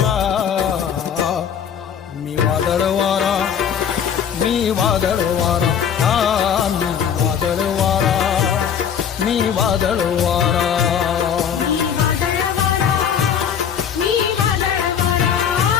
मी वादळ वारा, मी वादळ वारा, मी वादळ वारा, मी वादळ वारा.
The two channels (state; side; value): quieter; right; 8.1 dB